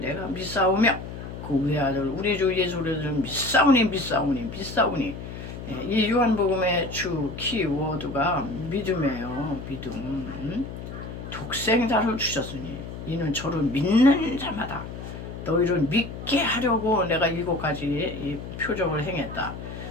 내가 믿사오며 그 외아들 우리 주 예수 그리스도를 믿사오니 이 요한복음의 주 키워드가 믿음이에요. 믿음. 독생자를 주셨으니 이는 저를 믿는 자마다 너희를 믿게 하려고 내가 7가지 표적을 행했다.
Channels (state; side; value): noise; left; hum, 10 dB below the sound